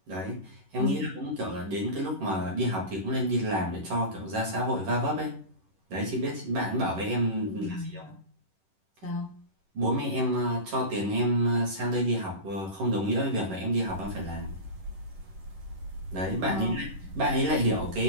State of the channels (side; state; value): left; late; 11 ms